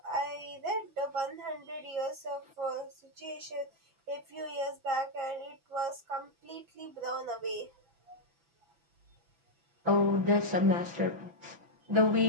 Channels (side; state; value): left; late; 6.0 ms